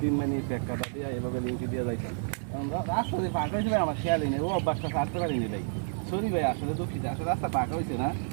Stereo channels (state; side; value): silent; left; digital silence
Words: মানে কাদা দিয়ে এভাবে লিঙ্কি দিয়ে যাইতাম। রাস্তা দিয়ে পাকা হয়েছে ভাই, আমার খেয়ালই নেই, ও অভ্যাসটা ছাড়তে পারিনি ভাই। সরি ভাই, আসলে দুঃখিত, আসলে রাস্তা পাকা হয়েছে না।